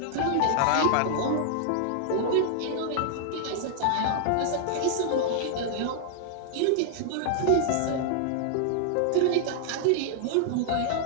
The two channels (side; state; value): both; different; correlation -0.01